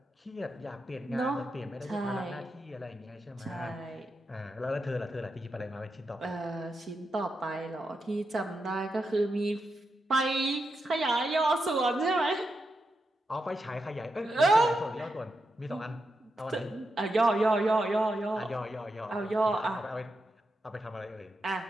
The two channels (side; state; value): both; normal; correlation 0.87